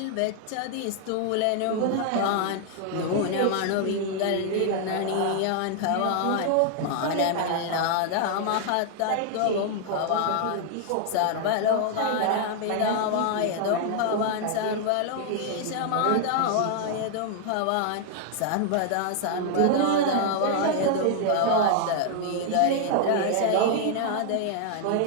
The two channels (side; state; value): both; different; correlation 0.00